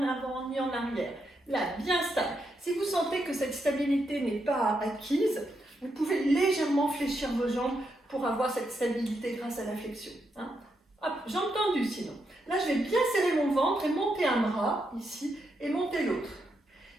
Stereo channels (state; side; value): normal; both; correlation 0.82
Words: avant ni en arrière. Là, bien stable. Si vous sentez que cette stabilité n'est pas acquise, vous pouvez légèrement fléchir vos jambes pour avoir cette stabilité grâce à la flexion. Hop, jambes tendues sinon. Là, je vais bien serrer mon ventre et monter un bras, ici, et monter l'autre.